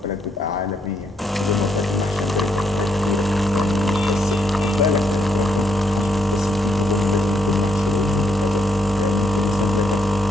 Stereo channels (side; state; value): both; normal; correlation 0.76